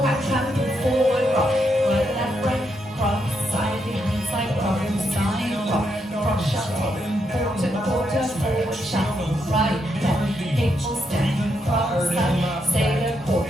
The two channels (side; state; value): both; normal; correlation 0.80